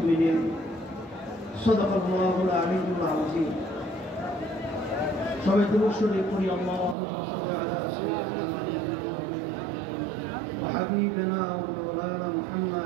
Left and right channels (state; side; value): drops out; left; at 7.0 s